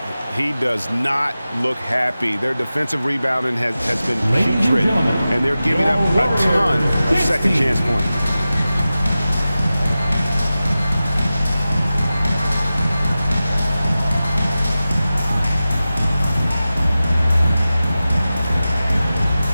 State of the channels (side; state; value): both; inverted; correlation -0.95